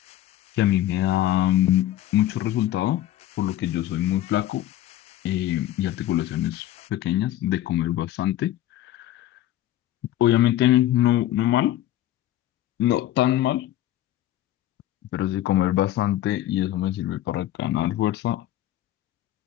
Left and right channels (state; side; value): quieter; right; 13.6 dB